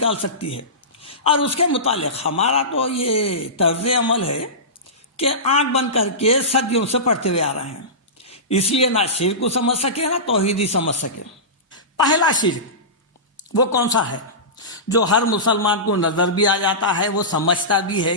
سکتی ہے، اور اس کے متعلق ہمارا تو یہ طرز عمل ہے کہ آنکھ بند کر کے صدیوں سے پڑھتے ہوئے آ رہے ہیں، اس لیے نہ شرک کو سمجھ سکے نہ توحید ہی سمجھ سکے۔ پہلا شرک وہ کون سا ہے جو ہر مسلمان کو نظر بھی آ جاتا ہے، وہ سمجھتا بھی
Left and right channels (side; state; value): both; normal; correlation -0.20